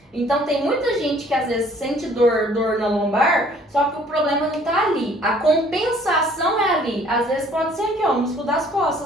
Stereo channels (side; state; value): both; normal; correlation 0.57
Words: Então, tem muita gente que às vezes sente dor na lombar, só que o problema não tá ali. A compensação é ali. Às vezes pode ser aqui, ó, o músculo das